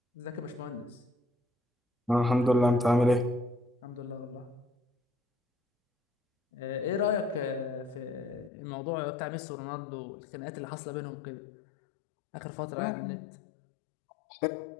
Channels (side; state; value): right; drops out; at 8.5 s